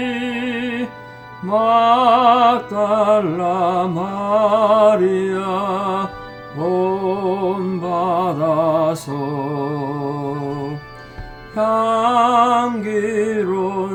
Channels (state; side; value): identical; both; correlation 1.00